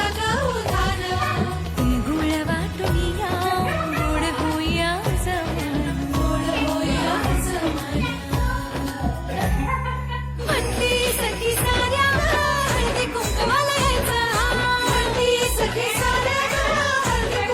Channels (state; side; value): identical; both; correlation 1.00